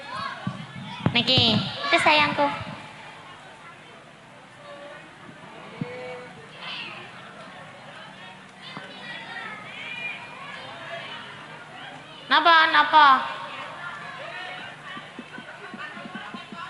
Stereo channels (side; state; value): both; identical; correlation 1.00